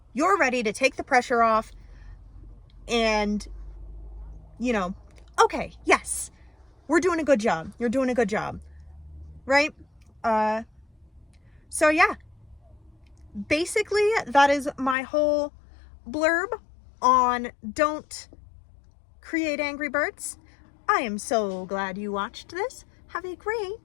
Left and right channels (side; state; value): right; drops out; at 15.0 s